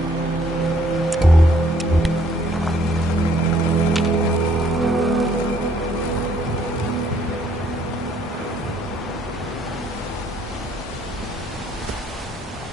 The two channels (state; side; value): normal; both; correlation 0.64